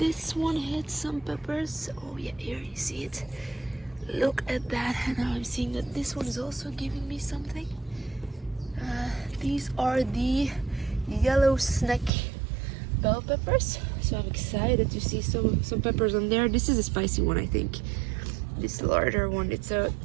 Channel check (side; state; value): left; drops out; at 12.1 s